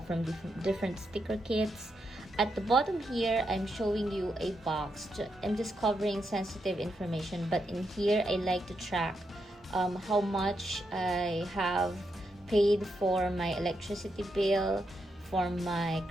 from different sticker kits. At the bottom here, I'm showing you a box. I'm just covering sensitive information, but in here, I like to track how much I have paid for my electricity bill, for my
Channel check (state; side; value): normal; both; correlation 0.83